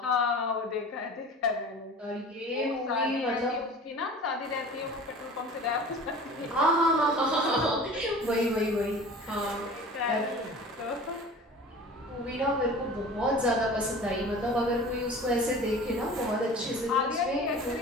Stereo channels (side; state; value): both; normal; correlation 0.40